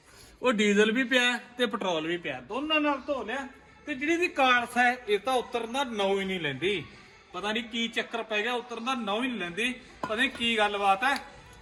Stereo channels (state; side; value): identical; both; correlation 1.00